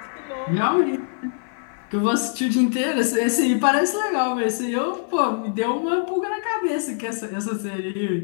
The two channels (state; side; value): silent; right; 63 dB below the other